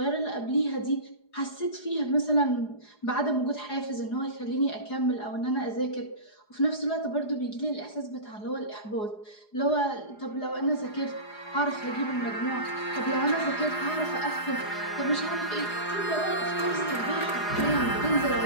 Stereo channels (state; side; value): late; right; 4.8 ms